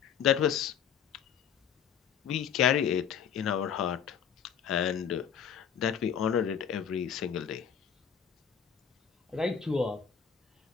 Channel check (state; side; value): quieter; right; 8.0 dB